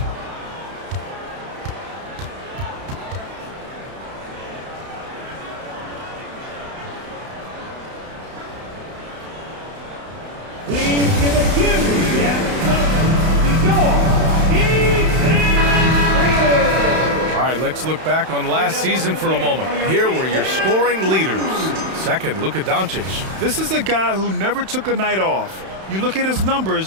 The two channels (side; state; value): left; late; 31 ms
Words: Please give a huge All right, let's look back on last season for a moment. Here were your scoring leaders. Second, Luka Doncic. This is a guy who never took a night off. You look at his